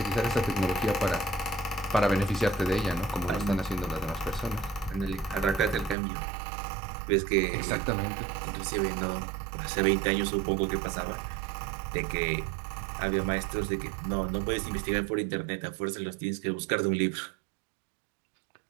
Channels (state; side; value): drops out; left; at 6.0 s